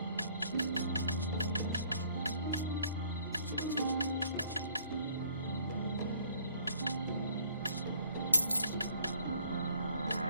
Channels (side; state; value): both; inverted; correlation -0.60